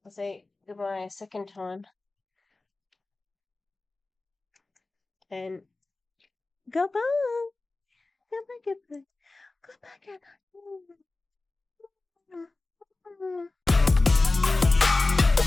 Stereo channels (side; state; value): right; quieter; 3.3 dB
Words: I'll say goodbye a second time. And goodbye! Goodbye, goodbye. Goodbye, goodbye.